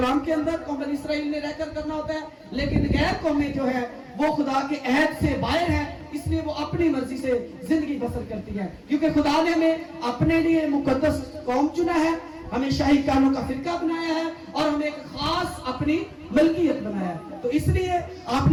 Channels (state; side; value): identical; both; correlation 1.00